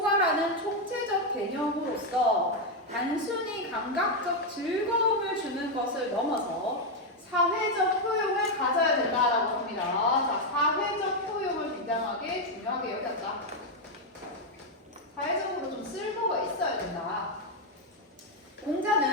총체적 개념으로서 단순히 감각적 즐거움을 주는 것을 넘어서 사회적 효용을 가져야 된다라고 합니다. 자, 사회적 효용을 굉장하게 중요하게 여겼다. 사회적으로 좀 쓸모가 있어야 된다.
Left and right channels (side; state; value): both; normal; correlation 0.03